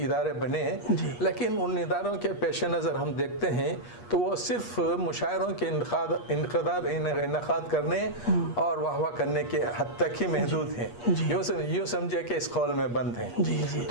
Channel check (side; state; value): right; late; 8.4 ms